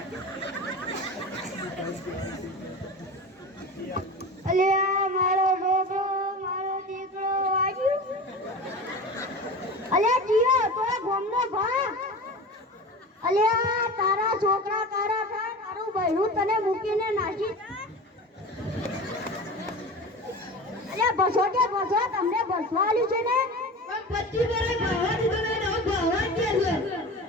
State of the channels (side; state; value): both; normal; correlation 0.32